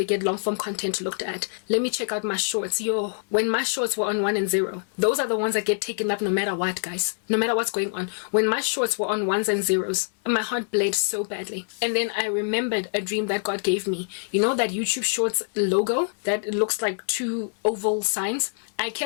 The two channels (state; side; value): silent; right; digital silence